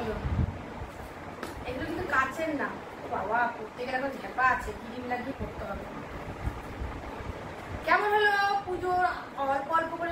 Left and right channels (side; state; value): both; identical; correlation 1.00